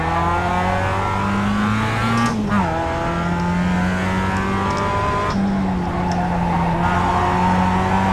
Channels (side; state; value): both; identical; correlation 1.00